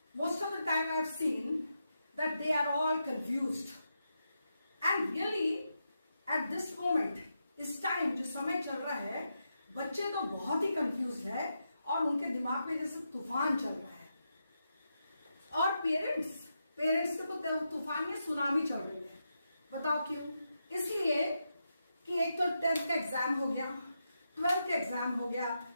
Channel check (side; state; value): both; inverted; correlation -0.86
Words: most of the time I have seen that they are all confused, and really at this moment, इस टाइम जो समय चल रहा है, बच्चे तो बहुत ही कंफ्यूज है और उनके दिमाग में जैसे तूफान चल रहा है। और पेरेंट्स के तो तूफान या सुनामी चल रही है। बताओ क्यों? इसलिए कि एक तो 10th का एग्जाम हो गया, 12th का एग्जाम हो गया,